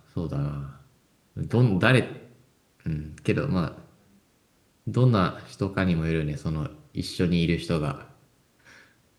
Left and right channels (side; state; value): both; identical; correlation 1.00